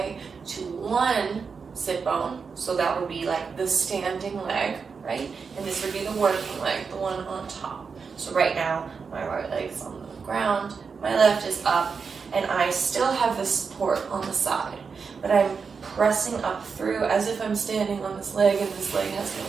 to one sit bone, so that would be like the standing leg, right? And this would be the working leg, the one on top. So right now, my right leg's on the ground, my left is up, and I still have the support on the side, but I'm pressing up through as if I'm standing on this leg and this leg has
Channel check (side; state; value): left; quieter; 5.5 dB